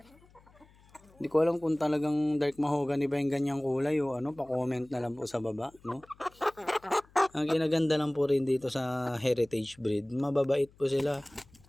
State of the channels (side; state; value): left; noise; hum, 28 dB below the sound